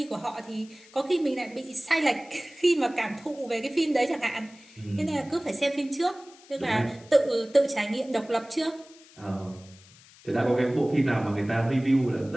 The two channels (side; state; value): left; noise; hiss, 24 dB below the sound